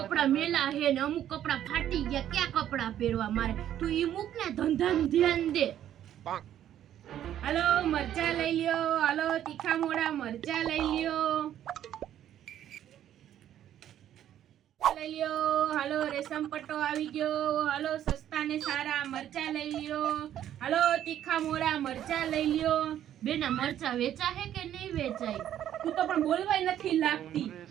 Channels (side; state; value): left; quieter; 11.1 dB